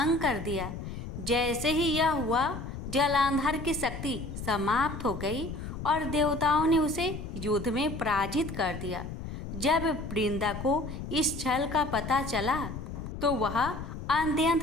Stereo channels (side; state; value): left; noise; rumble, 8 dB below the sound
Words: कर दिया। जैसे ही यह हुआ, जलांधर की शक्ति समाप्त हो गई और देवताओं ने उसे युद्ध में पराजित कर दिया। जब वृंदा को इस छल का पता चला तो वह